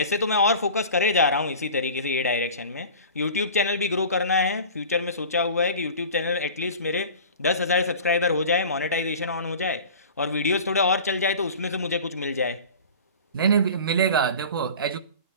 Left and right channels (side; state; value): both; inverted; correlation -0.38